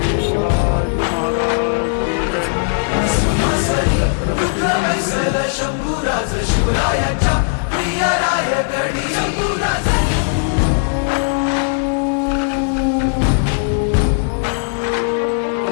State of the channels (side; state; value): right; silent; digital silence